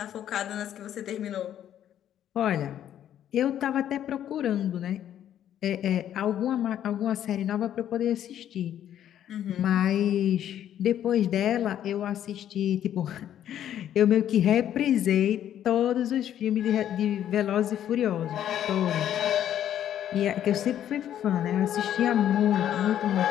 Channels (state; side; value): quieter; right; 10.7 dB